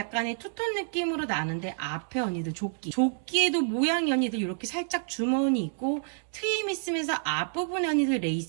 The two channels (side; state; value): left; silent; 59 dB below the other